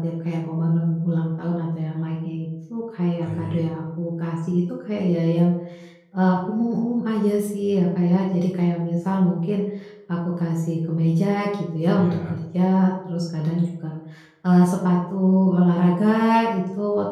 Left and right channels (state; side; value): identical; both; correlation 1.00